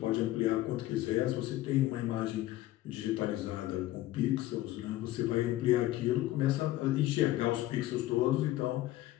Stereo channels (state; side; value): quieter; right; 15.7 dB